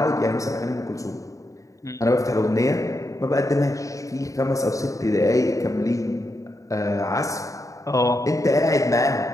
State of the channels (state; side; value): late; right; 0.16 ms